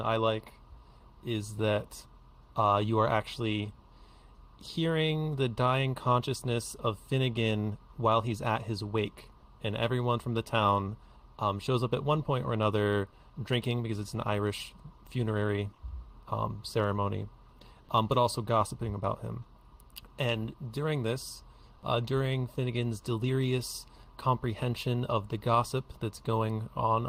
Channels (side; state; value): both; identical; correlation 1.00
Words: like is that you are actually hearing the dying consciousness of Finnegan while he's at his wake, and everyone from the town shows up at one point or another drinking because it's an Irish funerary ceremony, but also gossiping about him. And during this, during Finnegans' delirious comprehension of the gossip that's going on